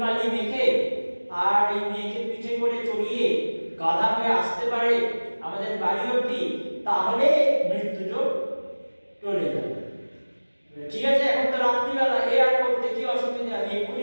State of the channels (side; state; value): both; inverted; correlation -1.00